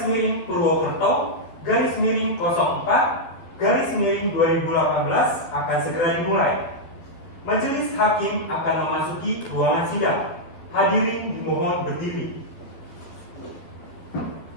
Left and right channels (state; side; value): late; right; 12 ms